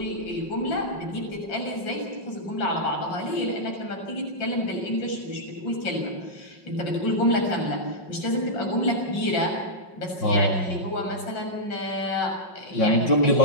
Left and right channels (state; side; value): late; right; 5.4 ms